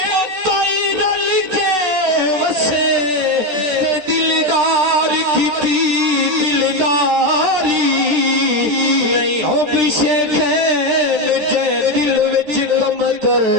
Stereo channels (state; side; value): late; left; 13 ms